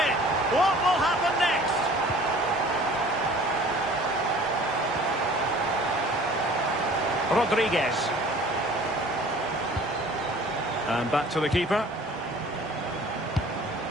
it. What will happen next? Rodriguez. And back to the keeper.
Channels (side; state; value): both; normal; correlation 0.48